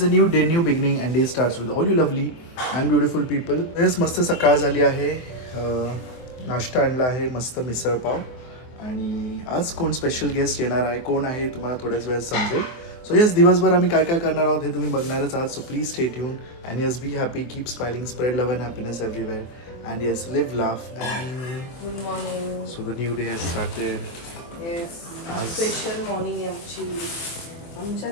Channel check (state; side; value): late; right; 24 ms